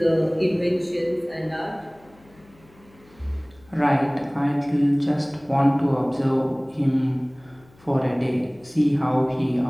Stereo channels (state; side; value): noise; left; hum, 28 dB below the sound